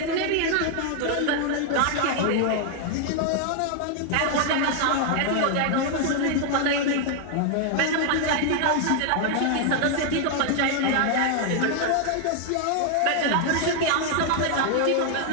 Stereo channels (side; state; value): both; different; correlation 0.00